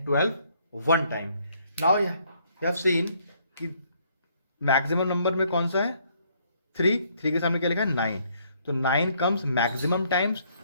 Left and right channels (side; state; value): both; inverted; correlation -0.67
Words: 12 1 time. Now you have seen कि मैक्सिमम नंबर में कौन सा है, 3 के सामने क्या लिखा है, 9। तो 9 comes maximum times,